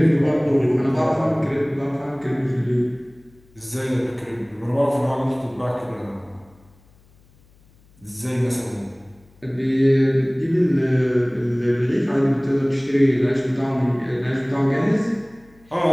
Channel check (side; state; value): left; noise; hum, 30 dB below the sound